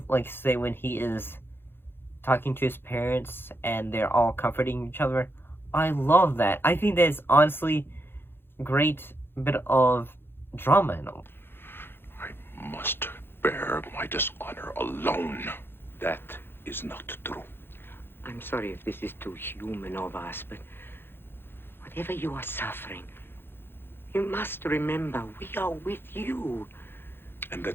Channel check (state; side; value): late; right; 0.10 ms